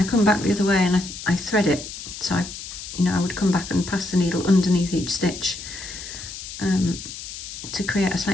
come back the other way and I thread it. So I would come back and pass the needle underneath each stitch to create a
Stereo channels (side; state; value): left; noise; hiss, 10 dB below the sound